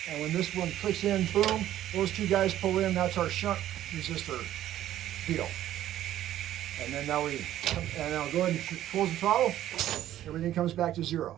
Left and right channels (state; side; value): quieter; left; 12.7 dB